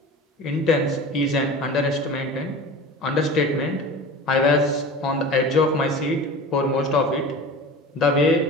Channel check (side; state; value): both; normal; correlation 0.35